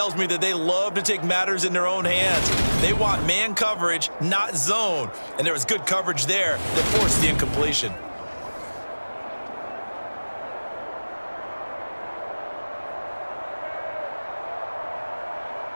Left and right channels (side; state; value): both; inverted; correlation -1.00